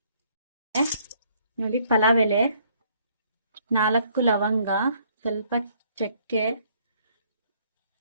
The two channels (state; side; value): inverted; both; correlation -0.64